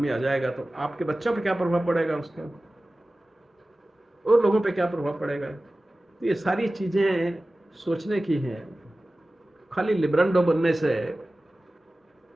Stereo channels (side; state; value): both; normal; correlation 0.96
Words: आ जाएगा, तो आपके बच्चों पे क्या प्रभाव पड़ेगा उसका, और लोगों पे क्या प्रभाव पड़ेगा। तो ये सारी चीजें सोचने की हैं। खाली लिब्रांडो बनने से,